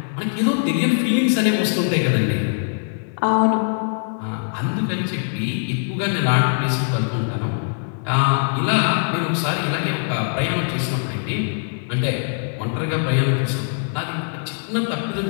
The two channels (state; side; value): silent; right; 64 dB below the other